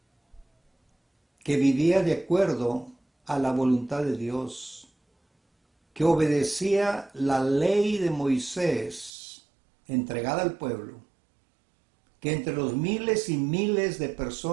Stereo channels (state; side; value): drops out; left; at 9.1 s